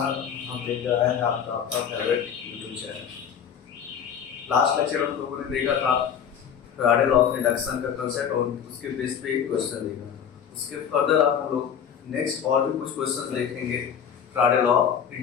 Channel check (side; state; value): right; quieter; 8.0 dB